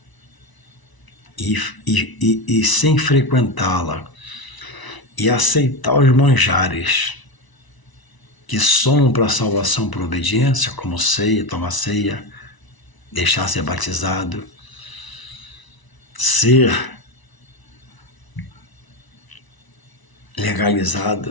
e sem frequentá-la e aceitar os manjares que somam para a salvação por obediência, como ceia, tomar ceia, deixar ser batizado, ser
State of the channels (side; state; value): right; late; 1.0 ms